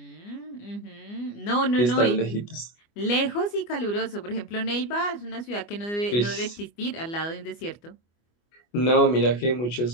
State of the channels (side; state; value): right; late; 24 ms